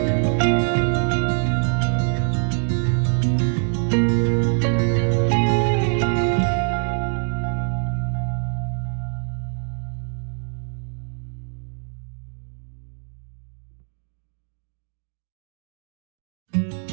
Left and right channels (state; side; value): silent; left; 58 dB below the other